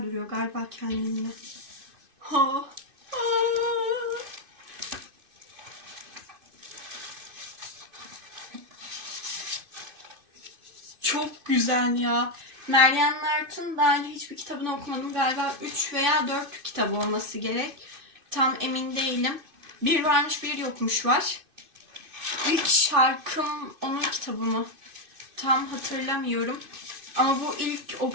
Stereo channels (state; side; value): late; left; 2.5 ms